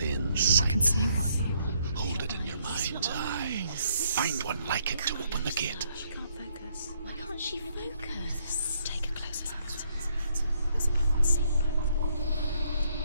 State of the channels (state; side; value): inverted; both; correlation -0.70